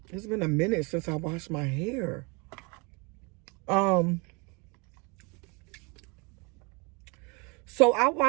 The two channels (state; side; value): quieter; left; 30.1 dB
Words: It's been a minute since I washed my hair. So I